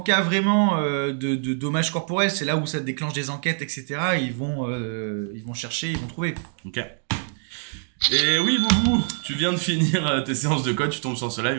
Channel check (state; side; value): silent; left; 58 dB below the other